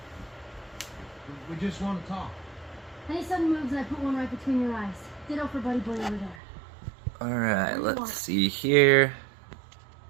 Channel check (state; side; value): drops out; left; at 6.4 s